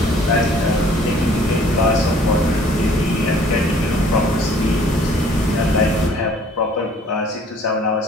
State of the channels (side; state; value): both; normal; correlation 0.56